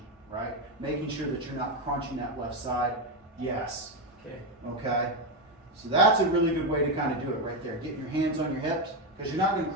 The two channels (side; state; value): both; normal; correlation 0.09